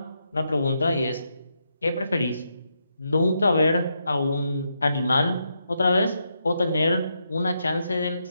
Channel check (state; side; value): inverted; both; correlation -0.81